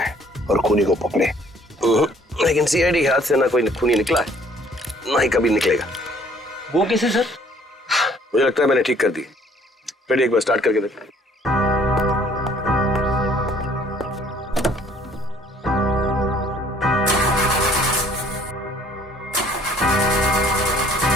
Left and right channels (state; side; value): normal; both; correlation 0.58